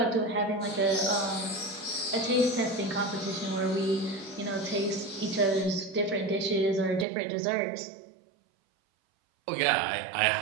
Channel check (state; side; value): drops out; left; at 7.1 s